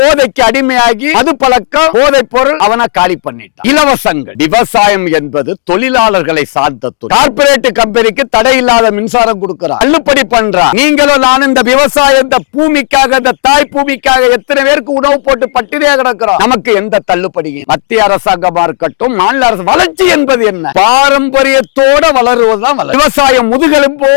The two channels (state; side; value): silent; right; digital silence